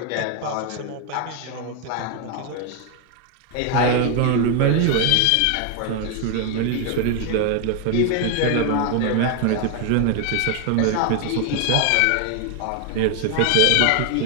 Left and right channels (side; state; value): both; different; correlation 0.01